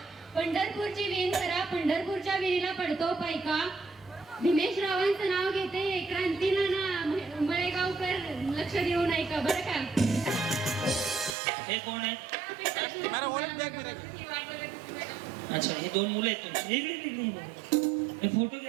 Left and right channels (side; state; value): left; drops out; at 11.4 s